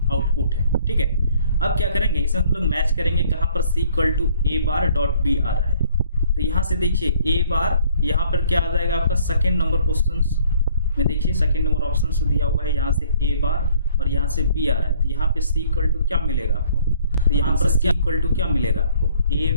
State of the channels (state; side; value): inverted; both; correlation -0.60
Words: आउटपुट है। ठीक है, अब क्या करेंगे, इसे हम लोग मैच करेंगे, कहाँ पर C equal to A bar dot B आ रहा है। तो यहाँ से देखिए ए बार, यहाँ पर क्या आ जाएगा आपका सेकेंड नंबर क्वेश्चन में, देखिए सेकेंड नंबर ऑप्शन दिया हुआ है, यहाँ से ए बार और यहाँ से बी आ रहा है। तो यहाँ पे सी इक्वल टू क्या मिलेगा आपको, तो यहाँ पर सी इक्वल टू क्या मिलेगा आपको, ए